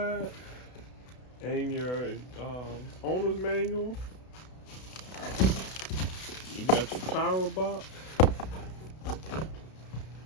and your owner's manual. You got your power box.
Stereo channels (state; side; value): late; right; 32 ms